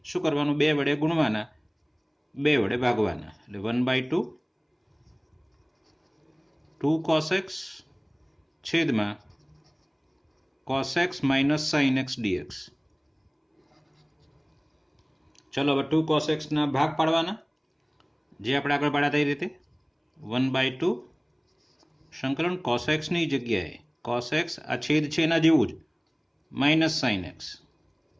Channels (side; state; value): both; identical; correlation 1.00